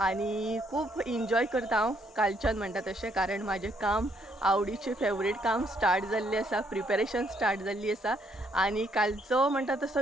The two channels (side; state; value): both; normal; correlation 0.71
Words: आनी खूब एन्जॉय करता हांव कालच्यान म्हणटा तशें. कारण म्हाजें काम आवडीचें फेवरेट काम स्टार्ट जाल्लें आसा, प्रिपेरेशन स्टार्ट जाल्ली आसा. आनी कालचो म्हणटा